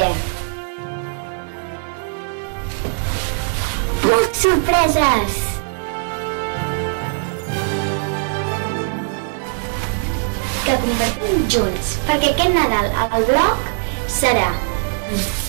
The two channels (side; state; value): left; silent; digital silence